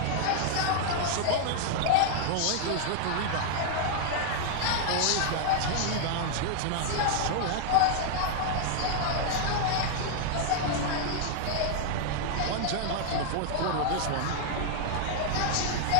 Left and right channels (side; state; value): both; different; correlation 0.00